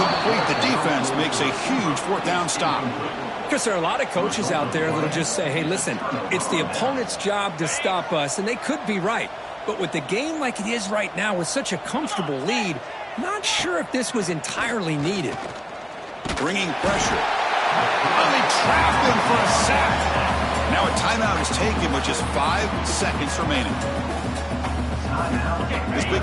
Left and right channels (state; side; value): identical; both; correlation 1.00